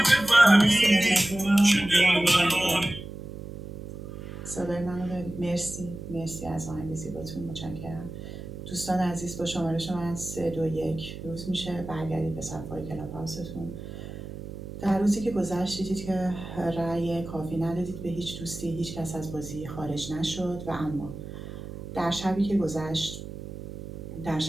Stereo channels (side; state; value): right; noise; hum, 10 dB below the sound